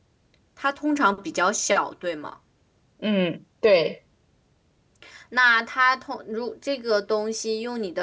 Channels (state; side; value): identical; both; correlation 1.00